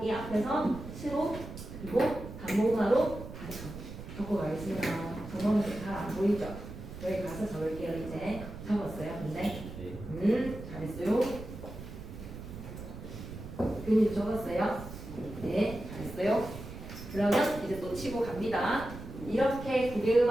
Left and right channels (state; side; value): noise; right; rumble, 11 dB below the sound